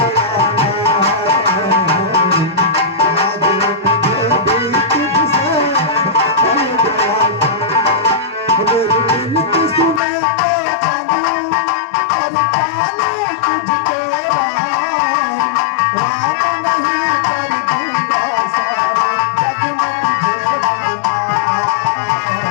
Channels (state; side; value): drops out; right; at 10.0 s